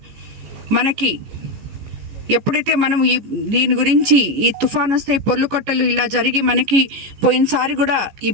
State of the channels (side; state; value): left; late; 15 ms